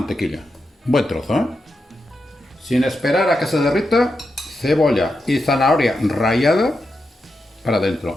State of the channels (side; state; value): both; normal; correlation 0.87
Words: Buen trozo, ¿eh? Sin esperar a que se derrita, cebolla y zanahoria rallada para